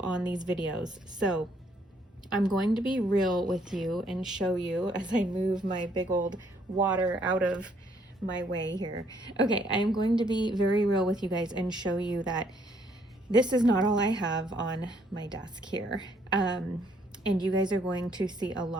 on these videos. So I'm going to be real with you and show you as I move my big old water out of my way here. Okay, I'm going to be very real with you guys and show you that this is not all I have on my desk here. And you guys are going to see a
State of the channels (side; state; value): both; normal; correlation 0.67